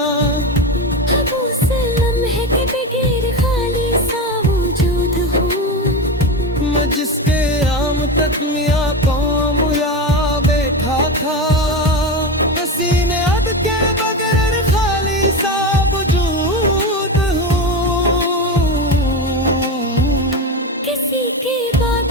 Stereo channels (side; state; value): both; normal; correlation 0.20